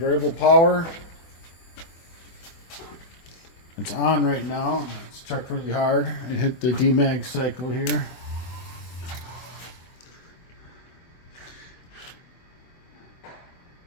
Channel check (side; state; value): right; late; 24 ms